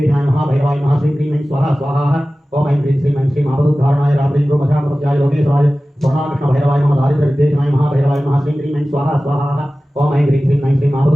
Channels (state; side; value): normal; both; correlation 0.96